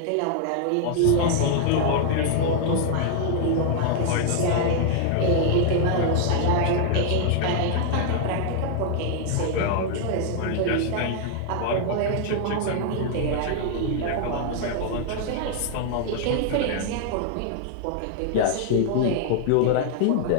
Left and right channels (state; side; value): different; both; correlation 0.00